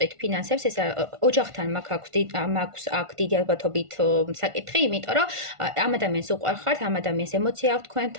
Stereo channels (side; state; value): left; late; 1.4 ms